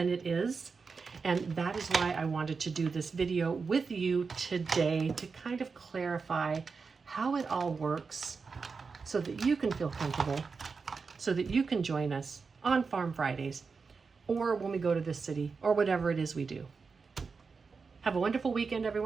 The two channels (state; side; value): quieter; left; 4.9 dB